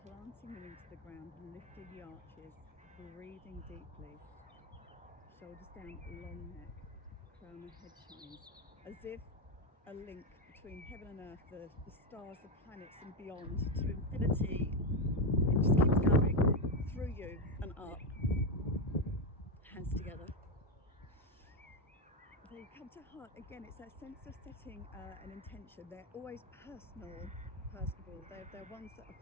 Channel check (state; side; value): normal; both; correlation 0.08